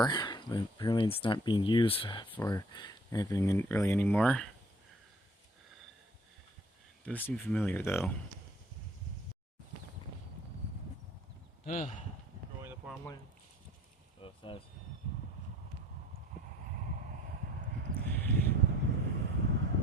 but apparently it's not being used for anything really anymore. It does seem familiar though. Growing the farmland. Both sides.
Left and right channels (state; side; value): normal; both; correlation 0.54